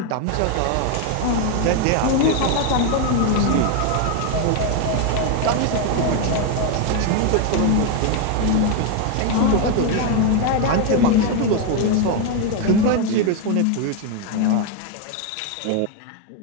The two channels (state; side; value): different; both; correlation 0.01